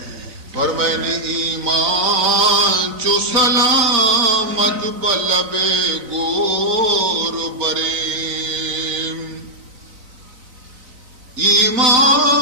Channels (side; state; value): left; late; 4.0 ms